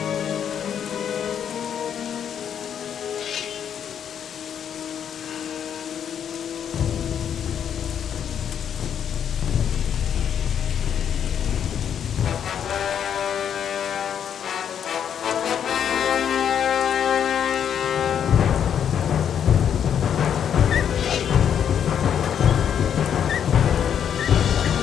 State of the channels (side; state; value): right; quieter; 8.6 dB